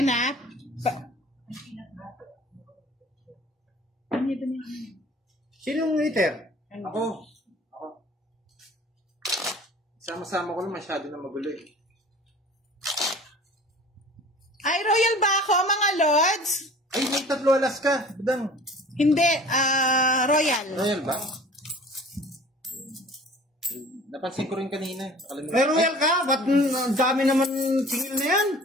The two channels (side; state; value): both; normal; correlation 0.45